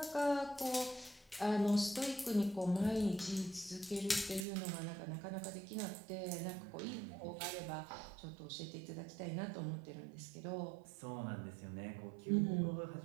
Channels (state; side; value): drops out; left; at 4.5 s